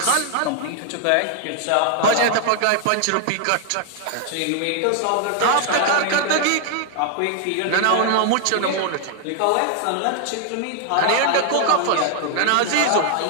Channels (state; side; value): different; both; correlation 0.00